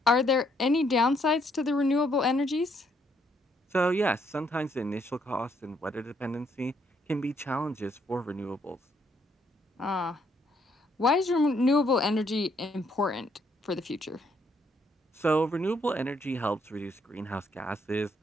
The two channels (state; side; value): normal; both; correlation 0.71